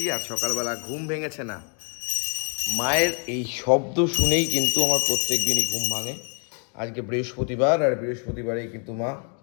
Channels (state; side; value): quieter; right; 39.8 dB